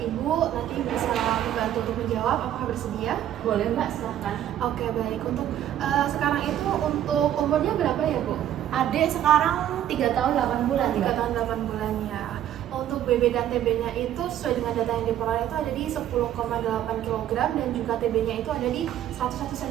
nanti bisa membantu untuk menjawab. Apakah bersedia? Boleh mbak, silahkan. Oke, baik. Untuk sekarang itu untuk umurnya berapa ya, Bu? Adik sekarang 3 tahun 8 bulan 3 mbak. tahun 8 bulan ya. Untuk BB dan TB-nya itu sesuai dengan data yang diperoleh itu ada di 10,8 kg dan juga TB-nya itu ada di 101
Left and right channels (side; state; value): left; quieter; 11.3 dB